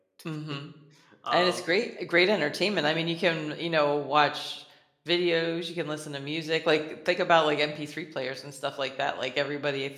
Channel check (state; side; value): identical; both; correlation 1.00